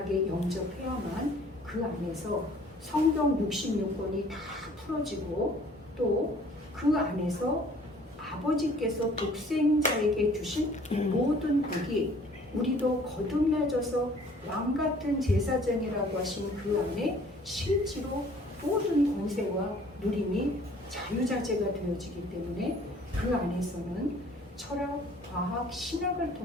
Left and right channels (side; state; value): both; normal; correlation 0.55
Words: 영접해야만 그 안에서 성경 66권이 다 풀어지고 또 그 안에서 아버지께서 독생자에게 주신 모든 복이 우리도 거듭나져서 왕 같은 제사장이라고 하신 그 안에 실제로 모든 권세와 누림이 자유자재가 되어지기 때문에 그 안에서는 철학, 과학, 신학을